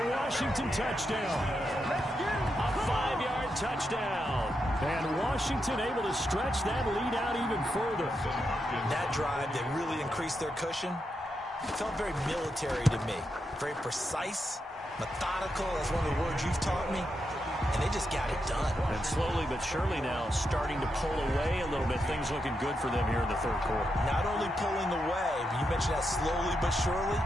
Washington touchdown. A 5-yard touchdown. And Washington able to stretch that lead out even further. That drive that really increased their cushion felt very military to me. Very precise, methodical, that's one of the words you've taught me. And they just got it done. And slowly but surely now starting to pull away a little bit. Things looking good for them here in the third quarter. Not only pulling away, but you mentioned that slowly but surely.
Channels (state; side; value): normal; both; correlation 0.84